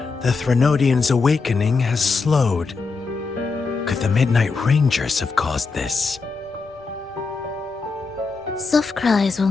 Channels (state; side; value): quieter; right; 4.4 dB